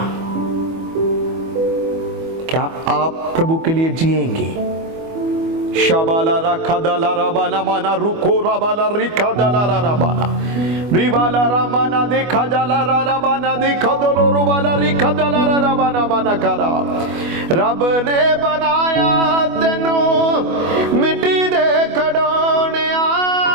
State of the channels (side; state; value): left; late; 25 ms